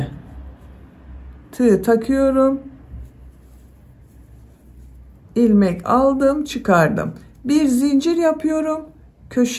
tığ takıyorum. İlmek aldım, çıkardım. Bir zincir yapıyorum.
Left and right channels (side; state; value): both; identical; correlation 1.00